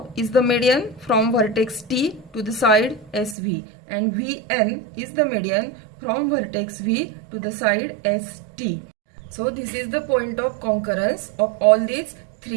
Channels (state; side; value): drops out; left; at 3.4 s